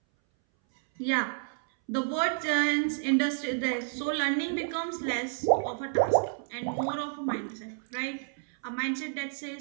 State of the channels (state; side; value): silent; left; 58 dB below the other